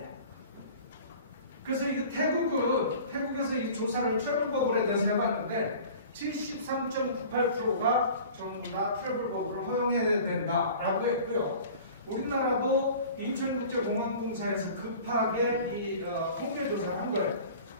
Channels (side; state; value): both; inverted; correlation -0.43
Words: 그래서 이 태국에서 이 조사를 트래블 버블에 대해서 해봤는데 73.98%가 전부 다 트래블 버블을 허용해야 된다라고 했고요. 우리나라도 인천국제공항공사에서 급하게 이 통계 조사를 한 거예요.